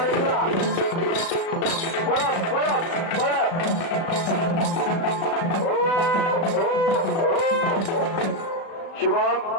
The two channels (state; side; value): late; right; 36 ms